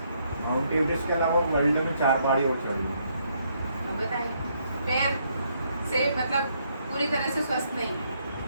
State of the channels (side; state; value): both; inverted; correlation -0.73